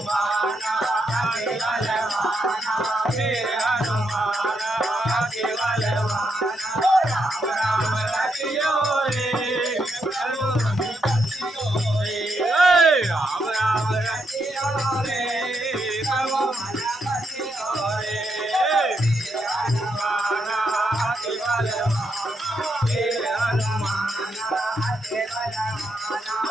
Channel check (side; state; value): both; normal; correlation 0.80